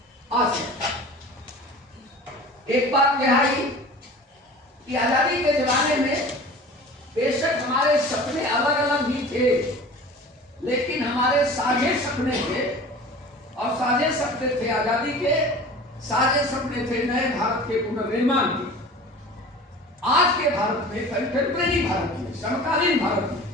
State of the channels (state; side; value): normal; both; correlation 0.40